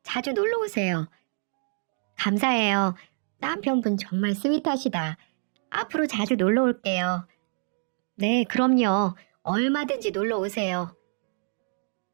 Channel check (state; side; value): silent; left; digital silence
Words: 자주 놀러 오세요. 감사해요. 남편분 정말 스윗하시다. 앞으로 자주 놀러 올게요. 네, 그럼요. 얼마든지 놀러 오세요.